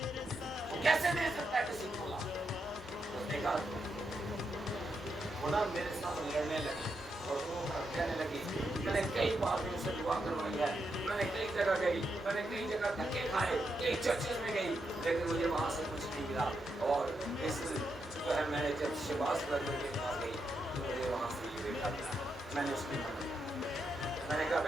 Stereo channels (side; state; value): both; normal; correlation 0.83